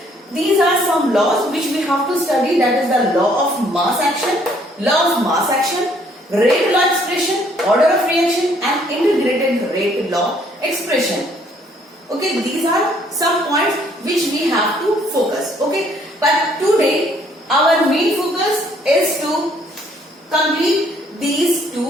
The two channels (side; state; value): both; normal; correlation 0.64